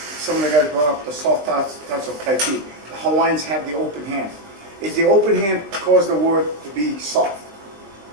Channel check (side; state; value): left; late; 20 ms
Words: of the guys brought up the soft touch of Tai Chi. The Hawaiians have the open hand. Is the open hand cause the word to be soft?